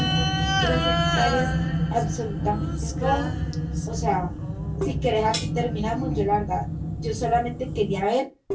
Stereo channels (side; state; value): both; identical; correlation 1.00